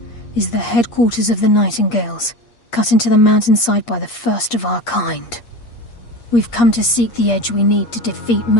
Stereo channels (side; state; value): right; late; 8.5 ms